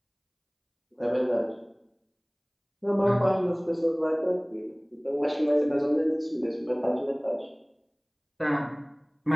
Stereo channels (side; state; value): both; identical; correlation 1.00